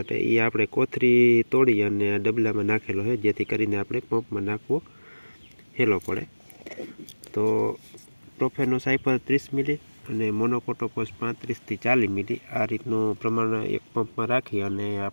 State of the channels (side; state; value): both; inverted; correlation -1.00